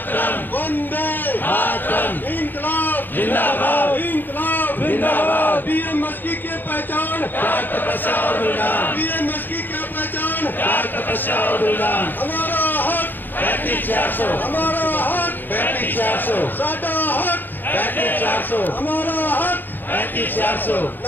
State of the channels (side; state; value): right; late; 0.090 ms